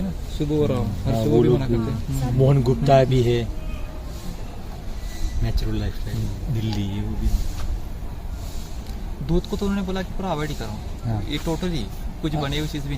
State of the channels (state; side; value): identical; both; correlation 1.00